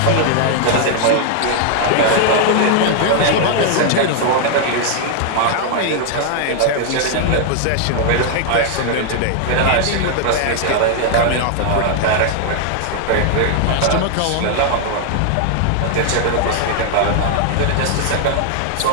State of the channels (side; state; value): both; different; correlation 0.00